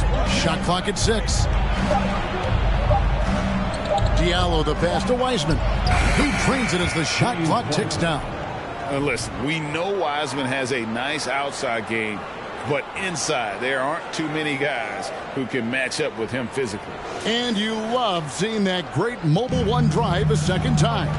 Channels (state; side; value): identical; both; correlation 1.00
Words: Shot clock at 6. Diallo the pass to Wiseman. He trains it as the shot clock ticks down. Listen, we know Wiseman has a nice outside game, but inside there aren't too many guys who can match up with him physically. And you love seeing that great mobile one drive a second time.